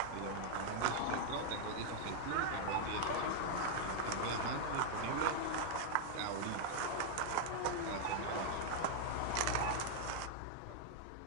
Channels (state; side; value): different; both; correlation 0.00